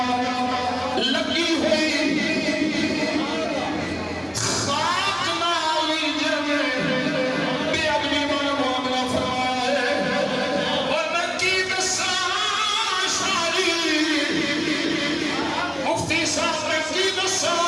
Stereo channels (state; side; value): identical; both; correlation 1.00